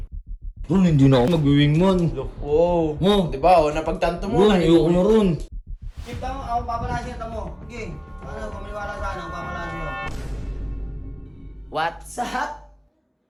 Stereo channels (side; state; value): both; identical; correlation 1.00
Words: Ron, hindi na ako mag-wingman. Wow. Oh. Diba, oh, napagtanto mo. Ron, ayoko na ron. Keep tamo, ako papalasin ito mo. Okay. Ano, kumaliwala sa ano, papalasin mo. What's up?